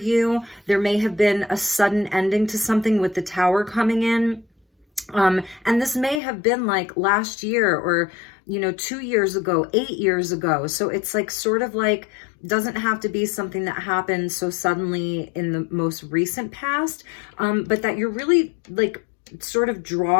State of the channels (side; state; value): right; drops out; at 6.2 s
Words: There may have been a sudden ending to something with the Tower coming in. And this may have been like last year or, 2 years ago, 8 years ago. So it's like sort of like, doesn't have to be something that happened so suddenly in the most recent past, but that you're really like sort of